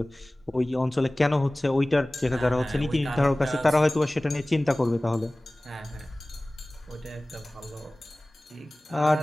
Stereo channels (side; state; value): both; normal; correlation 0.98